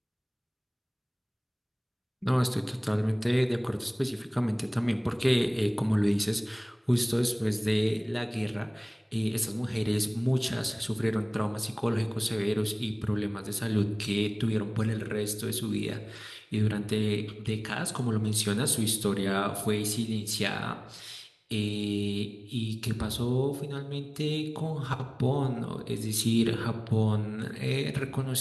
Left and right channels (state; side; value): identical; both; correlation 1.00